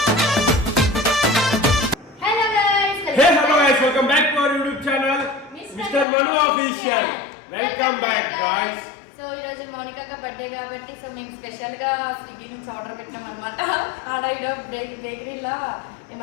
Welcome back to our YouTube channel mister Manu official. Welcome back guys. So ఈ రోజు మౌనికక్క బర్త్డే కాబట్టి సో మేము స్పెషల్ గా స్విగ్గీ నుంచి ఆర్డర్ పెట్టాం అనమాట. ఆడ బేకరీలో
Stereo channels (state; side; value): drops out; right; at 6.1 s